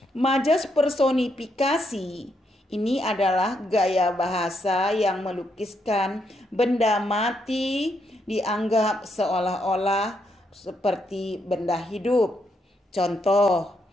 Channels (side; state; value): both; normal; correlation 0.78